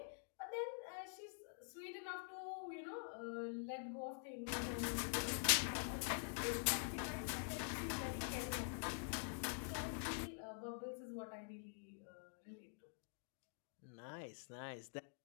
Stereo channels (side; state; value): right; silent; digital silence